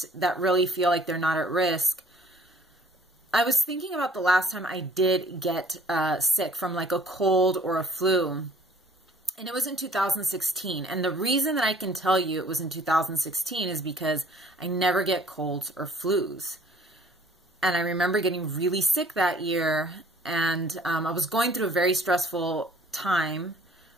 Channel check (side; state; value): both; normal; correlation 0.54